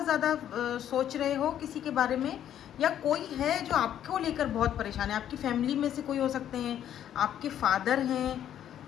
ज़्यादा सोच रहे हो किसी के बारे में, या कोई है जो आपको लेकर बहुत परेशान है। आपकी फैमिली में से कोई हो सकते हैं, आपके फादर हैं,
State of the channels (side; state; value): right; quieter; 10.5 dB